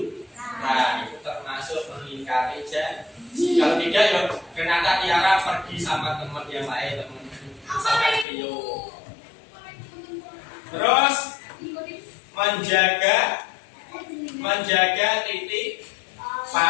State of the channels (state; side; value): drops out; right; at 8.2 s